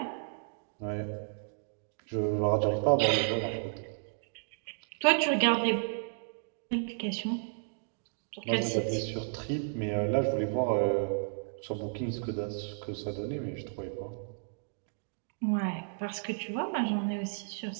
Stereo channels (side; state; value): left; silent; digital silence